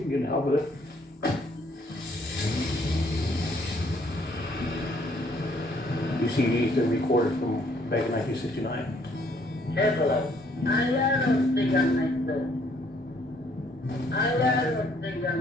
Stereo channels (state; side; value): normal; both; correlation 0.65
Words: it. You see these are recorded from back in 1969.